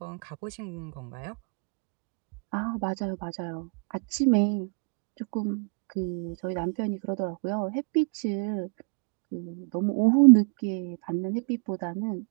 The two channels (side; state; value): left; quieter; 36.0 dB